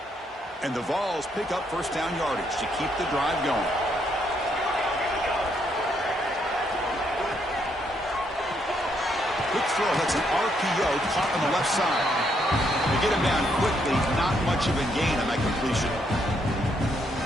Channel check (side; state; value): both; normal; correlation 0.74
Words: And the Vols pick up first down yardage to keep the drive going. Quick throw, that's an RPO caught on the left side. They get him down quickly, not much of a gain on that completion.